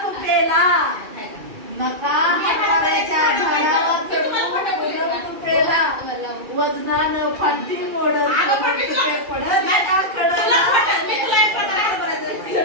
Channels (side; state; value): left; late; 2.3 ms